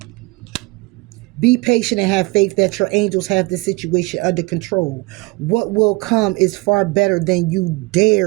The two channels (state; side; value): quieter; left; 24.5 dB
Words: Be patient and have faith that your angels have the situation under control. What will come is far better than you